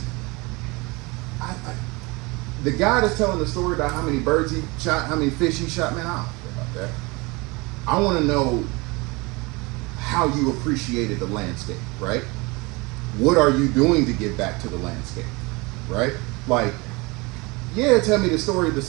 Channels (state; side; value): quieter; left; 25.6 dB